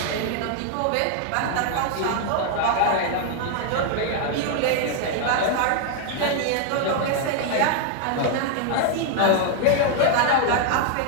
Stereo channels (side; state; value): both; different; correlation 0.00